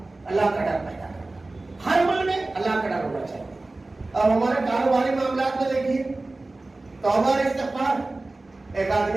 اللہ کا ڈر پیدا کرنا. ہر عمل میں اللہ کا ڈر ہونا چاہیے. اب ہمارے کاروباری معاملات میں دیکھیے, توبہ اور استغفار. ایک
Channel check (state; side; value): quieter; left; 3.1 dB